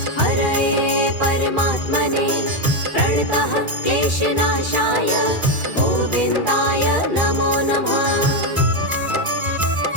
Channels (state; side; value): late; left; 2.4 ms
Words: हरये परमात्मने प्रणतः क्लेशनाशाय गोविन्दाय नमो नमः।